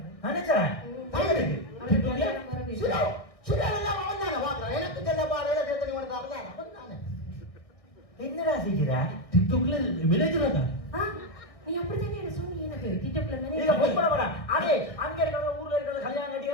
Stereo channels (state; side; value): late; right; 1.6 ms